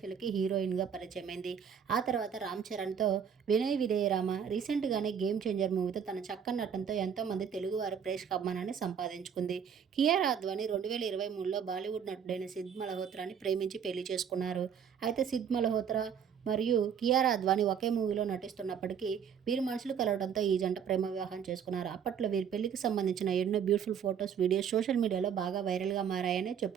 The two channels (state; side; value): quieter; left; 7.7 dB